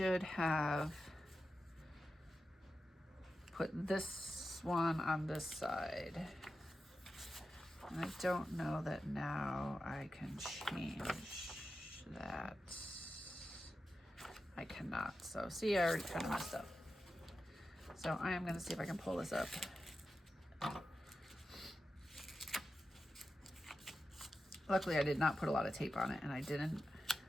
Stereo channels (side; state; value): both; normal; correlation 0.91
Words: have put this one on this side. And I don't know that now I can change that. I cannot. So see, I already kind of messed up. So I am going to see if I can pull this up. Luckily, I did not put a lot of tape on it, and I didn't